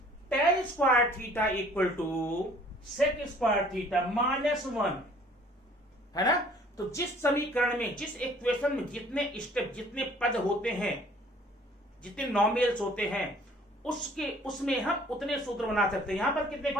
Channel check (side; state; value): both; normal; correlation 0.55